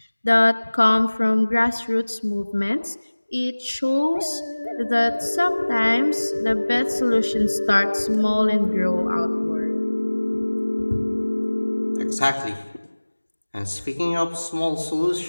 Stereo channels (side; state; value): both; inverted; correlation -1.00